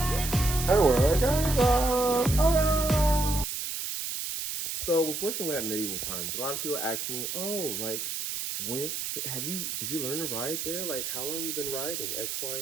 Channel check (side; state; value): right; noise; hiss, 4 dB below the sound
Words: and where I came from. Ah! So with working with at medieval times, a lot of people ask me, "Oh, like when did you learn to ride there? Like how long you been riding X, Y,